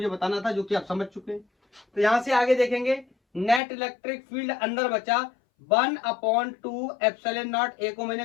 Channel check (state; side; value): drops out; right; at 3.6 s